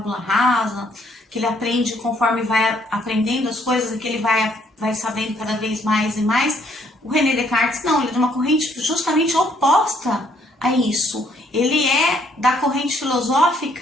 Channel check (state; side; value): normal; both; correlation 0.67